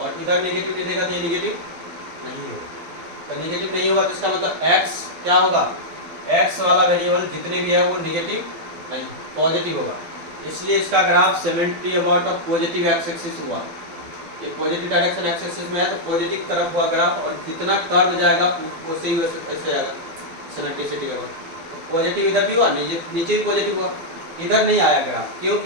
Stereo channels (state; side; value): late; left; 12 ms